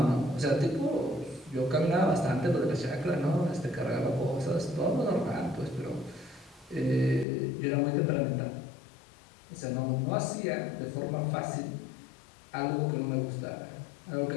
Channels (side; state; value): right; drops out; at 7.2 s